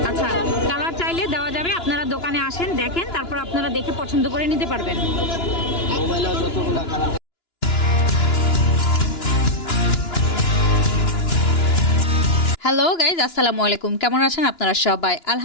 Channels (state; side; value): late; right; 2.9 ms